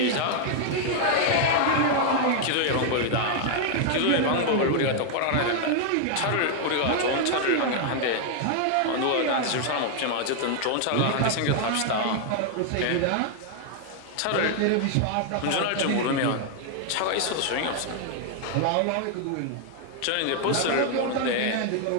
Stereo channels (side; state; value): both; different; correlation 0.00